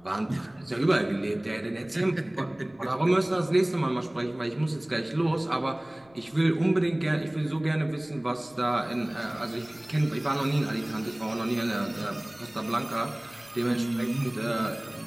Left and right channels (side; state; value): left; noise; rumble, 30 dB below the sound